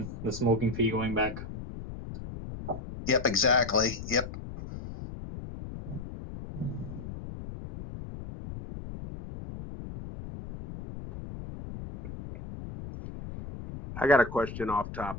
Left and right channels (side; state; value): left; noise; rumble, 10 dB below the sound